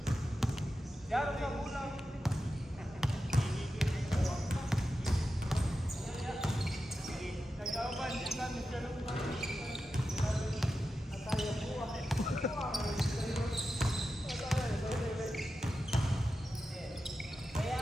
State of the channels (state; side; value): normal; both; correlation 0.91